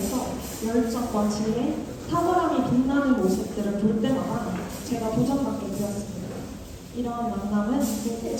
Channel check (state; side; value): identical; both; correlation 1.00